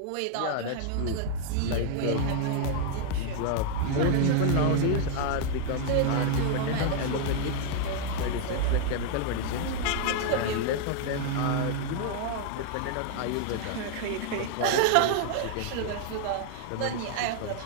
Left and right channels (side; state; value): both; different; correlation 0.00